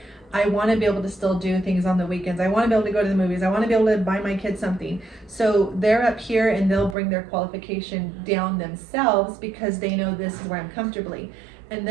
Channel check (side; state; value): left; drops out; at 7.0 s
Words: I want to be able to still do things on the weekends. I want to be able to go to the movies. I want to be able to buy my kids something. So they're up here and they'll bring their qualification down themselves because they know this is where I'm comfortably. And